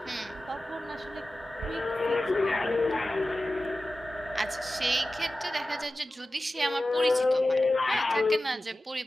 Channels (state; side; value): normal; both; correlation 0.95